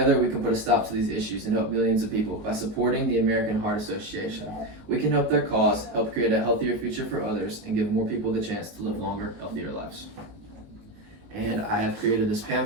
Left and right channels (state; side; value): late; left; 19 ms